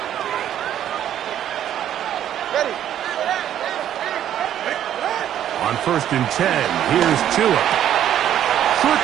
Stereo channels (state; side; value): quieter; left; 10.8 dB